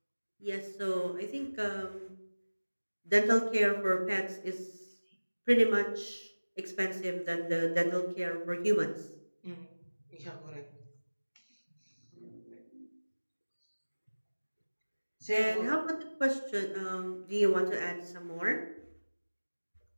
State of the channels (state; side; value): inverted; both; correlation -1.00